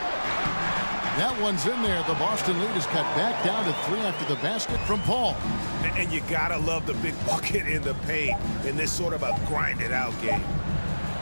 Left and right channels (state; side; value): inverted; both; correlation -1.00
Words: That one's in there. The Boston lead is cut back down to 3 after the basket from Paul. And you got to love the big bucket in the paint in this sort of a grinded-out game.